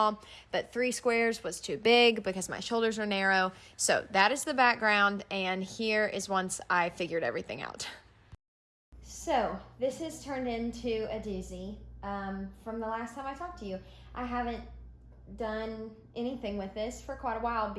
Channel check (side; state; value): both; identical; correlation 1.00